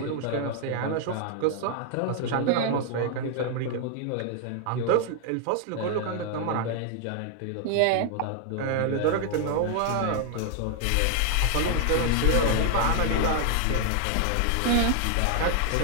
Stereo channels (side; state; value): both; different; correlation 0.00